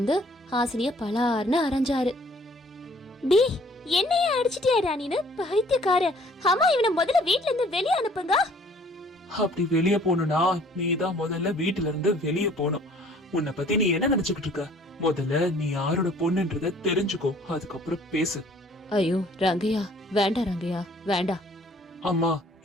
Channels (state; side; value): normal; both; correlation 0.57